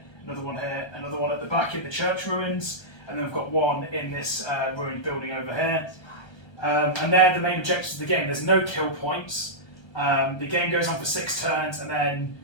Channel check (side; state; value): right; late; 1.3 ms